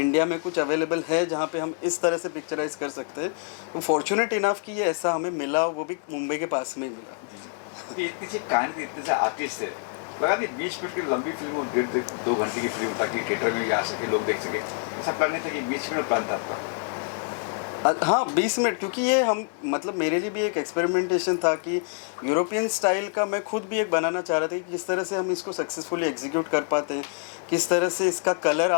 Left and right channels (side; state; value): right; quieter; 39.4 dB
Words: में कुछ अवेलेबल है जहाँ पे हम इस तरह से पिक्चराइज कर सकते हैं, तो फॉर्चुनेट इनफ कि ये ऐसा हमें मिला, वो भी मुंबई के पास में ही मिला। ये इतनी सी कहानी थी, इतने से आर्टिस्ट है, लगा नहीं 20 मिनट की लंबी फिल्म और 1.5-2 घंटे की फिल्म ताकि थिएटर में भी आ सके, लोग देख सके, ऐसा प्लान नहीं था कि 20 मिनट प्लान था आपका? हाँ 20 मिनट, क्योंकि ये हम मतलब मेरे लिए भी एक एक्सपेरिमेंटेशन था कि यूरोपियन स्टाइल का मैं खुद भी एक बनाना चाह रहा था कि किस तरह से हम इसको सक्सेसफुली एग्जीक्यूट कर पाते हैं, किस तरह से इसका कलर